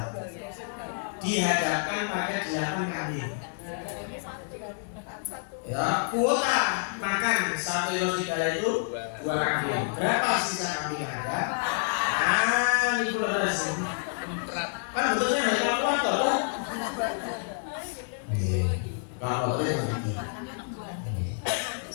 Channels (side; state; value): right; silent; digital silence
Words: dihadapkan pada 8 kambing. Ya, kuota makan 1 kilo serigala itu 2 kambing. Berapa sisa kambing ada? Ini kualitas. Kan betulnya hanya kalkulator kan? Kalkulatornya begitu.